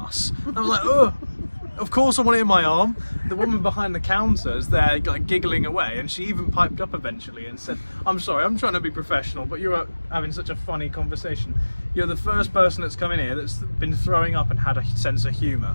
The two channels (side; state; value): both; inverted; correlation -1.00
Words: And I was like, oh, of course I want it in my arm. The woman behind the counter is there like giggling away, and she even piped up eventually and said, I'm sorry, I'm trying to be professional, but you're having such a funny conversation. You're the first person that's come in here that's been throwing up and had a sense of humour.